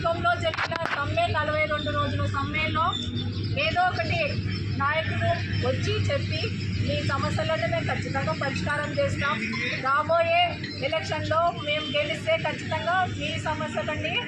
జరిగిన సమ్మె 42 రోజుల సమ్మెలో ఏదో ఒకటి నాయకులు వచ్చి చెప్పి మీ సమస్యలను మేము ఖచ్చితంగా పరిష్కారం చేస్తాం, రాబోయే ఎలక్షన్లో మేము గెలిస్తే ఖచ్చితంగా మీ సమస్యలన్నీ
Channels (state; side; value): identical; both; correlation 1.00